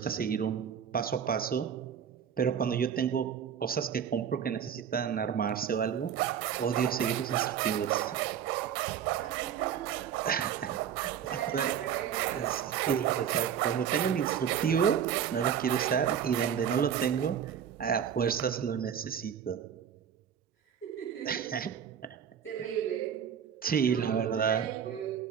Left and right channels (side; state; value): left; quieter; 8.4 dB